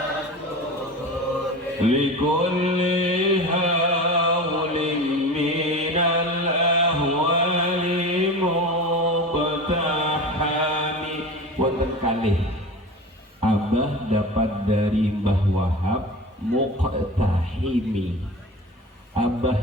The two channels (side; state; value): both; normal; correlation 0.32